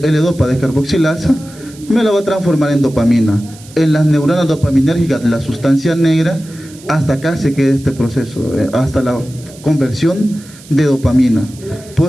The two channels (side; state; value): right; noise; hiss, 22 dB below the sound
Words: descarboxilasa, me la va a transformar en dopamina. En las neuronas dopaminérgicas, la sustancia negra, hasta acá se queda este proceso, hasta la conversión de dopamina.